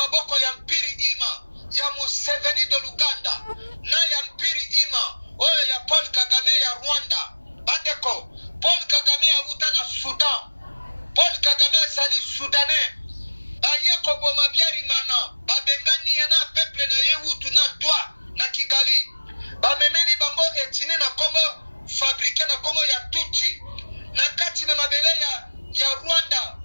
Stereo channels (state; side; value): inverted; both; correlation -1.00